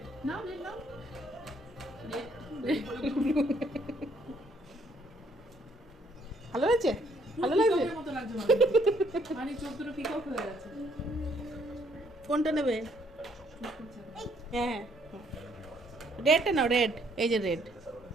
নাও রেড নাও ভালো হয়েছে? ভালো লাগছে? পিককের মতো লাগছে মানে চোখ দুটো পিকক হয়ে গেছে। কোনটা নেবে? হ্যাঁ রেডটা নাও, রেড, এই যে রেড।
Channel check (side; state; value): both; normal; correlation 0.67